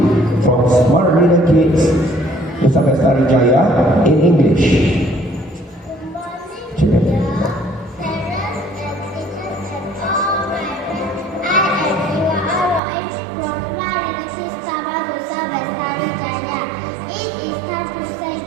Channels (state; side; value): drops out; left; at 12.8 s